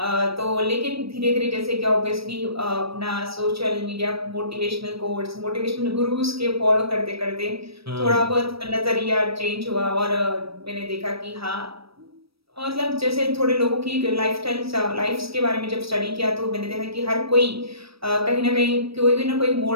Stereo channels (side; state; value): left; late; 0.76 ms